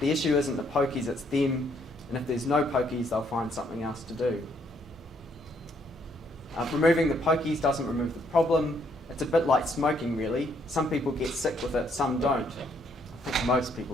issue isn't the pokies, it's them, and if there's no pokies, they'll find something else to do. Removing the pokies doesn't remove the problem. It's a bit like smoking, really. Some people get sick with it, some don't. I think most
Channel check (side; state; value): both; normal; correlation 0.70